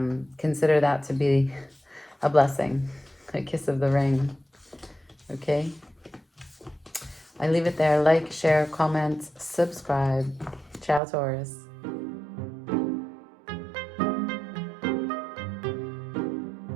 consider that to be a blessing, a kiss of the ring. Okay? I leave it there. Like, share, comment, subscribe. Ciao, Taurus.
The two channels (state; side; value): drops out; left; at 11.0 s